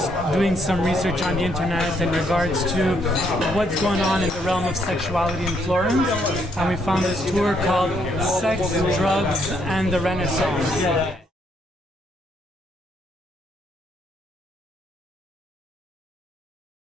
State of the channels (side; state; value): both; normal; correlation 0.72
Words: doing some research on the internet in regards to what's going on in the realm of sexuality in Florence, and we found this tour called Sex, Drugs, and the Renaissance.